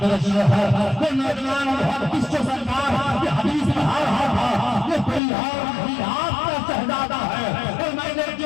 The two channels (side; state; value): right; drops out; at 5.2 s